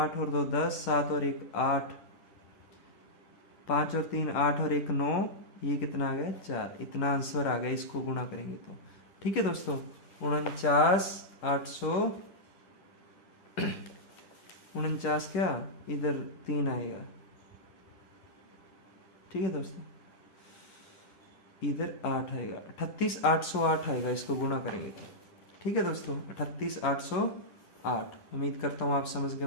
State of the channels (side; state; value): right; late; 10 ms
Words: और 2 10, 7 और 1 8, 5 और 3 8 और 1 9, ये कितना आ गया 4। इतना आंसर आ गया, इसको गुणा करेंगे तो। ठीक है दोस्तों, 49 800, 49 क्या, इधर 3 आएगा। ठीक है दोस्तों, इधर 8 आएगा, 38 808 आएगा, इसको गुणा करेंगे तो। ठीक है दोस्तों, 38 808। उम्मीद करता हूँ आप समझ गए